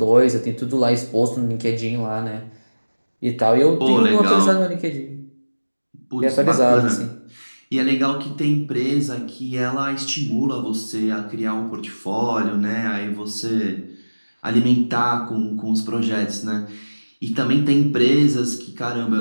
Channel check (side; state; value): both; inverted; correlation -1.00